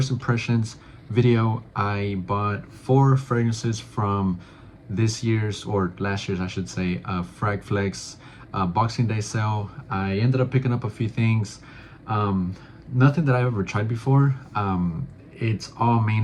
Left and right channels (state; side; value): identical; both; correlation 1.00